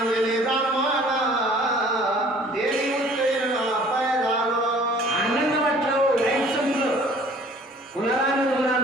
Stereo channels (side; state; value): both; normal; correlation 0.53